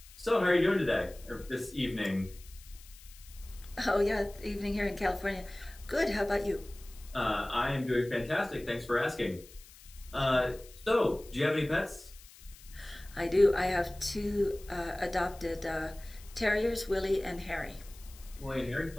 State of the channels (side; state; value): left; noise; hiss, 21 dB below the sound